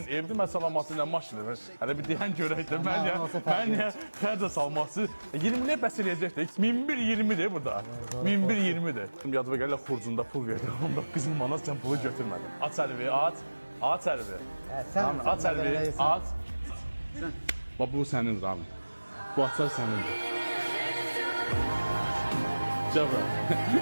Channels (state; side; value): inverted; both; correlation -1.00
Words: evdir, mən salamatı ilə maşın edir. Hələ bir deyən görək də, mən niyə xərcə salması, 20'liyə bəs eləyəcəkdir. 1120'dir burada. 1120'dir. Yadıma gələ xurcunda pul verdim, 19 manat sən pulu götürmədin. Aç əlvi, aç. Aç əlvi. Sən Aç əlvi, aç. Bax, bu sənin Rami. Bu açar sənindir. Cəbra,